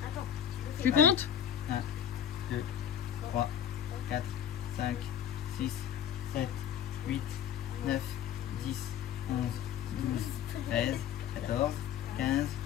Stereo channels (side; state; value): right; quieter; 9.3 dB